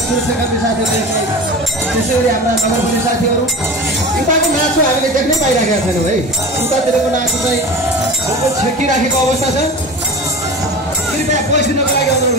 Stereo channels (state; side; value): normal; both; correlation 0.33